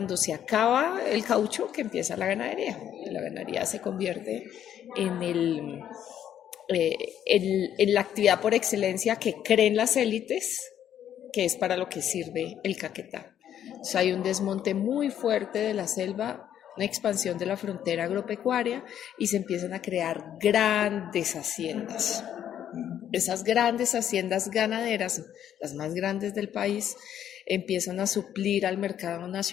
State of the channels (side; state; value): right; quieter; 10.2 dB